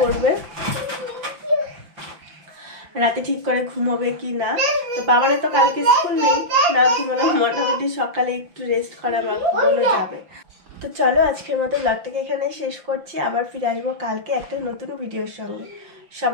রাতে ঠিক করে ঘুমোবে কি না। তো বাবারে তো কালকে স্কুল নেই, না ঘুমানো, মোটামুটি সকালে একটু রেস্ট করা বা ঘুমানো যাবে। তো চলো আজকের মতো ব্লগটাকে এখানে শেষ করছি, আবার ফিরে আসবো কালকে একটা নতুন ভিডিওর সঙ্গে।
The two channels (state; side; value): late; left; 5.6 ms